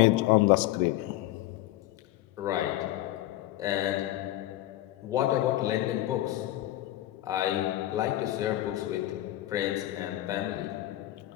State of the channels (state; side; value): quieter; right; 15.2 dB